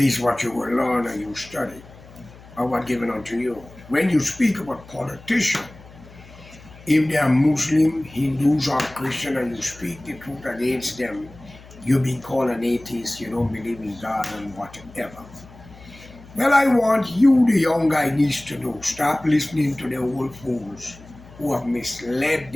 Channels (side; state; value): left; noise; hum, 21 dB below the sound